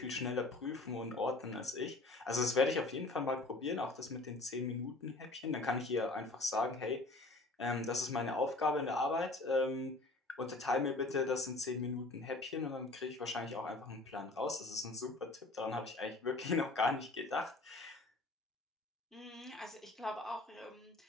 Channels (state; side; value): quieter; right; 3.1 dB